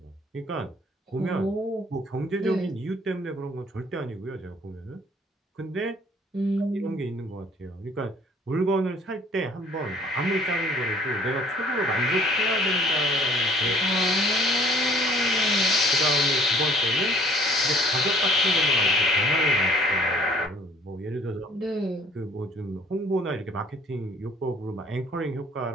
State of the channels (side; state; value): both; normal; correlation 0.56